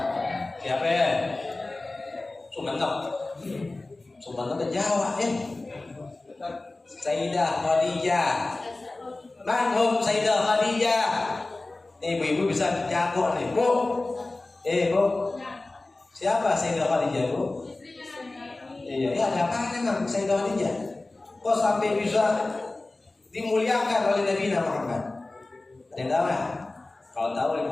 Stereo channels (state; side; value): quieter; right; 3.1 dB